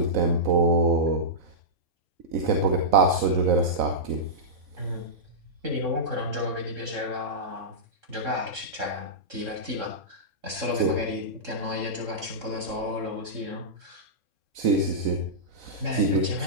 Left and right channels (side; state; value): left; late; 3.7 ms